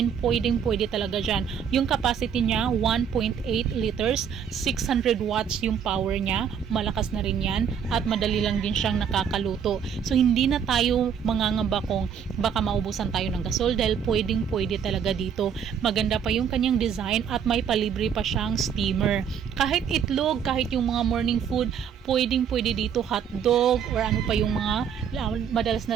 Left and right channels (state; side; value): quieter; left; 7.6 dB